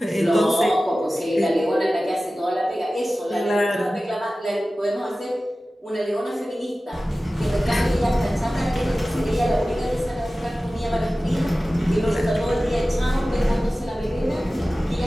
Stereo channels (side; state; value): both; normal; correlation 0.96